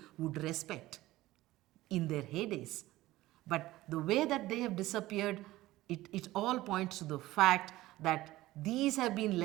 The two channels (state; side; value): quieter; left; 17.1 dB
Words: would respect in their heydays. But the way that they have disappeared, it all points to the fact that these have been